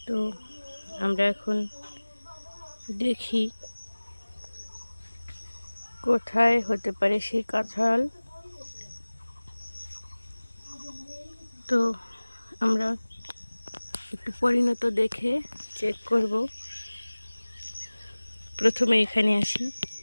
তো আমরা এখন দেখি কোথায় হতে পারে সেই কাঁঠাল। তো আমরা একটু পরিণত দেখে চেক করব। প্রথমে এখানে আসি,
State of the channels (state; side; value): inverted; both; correlation -1.00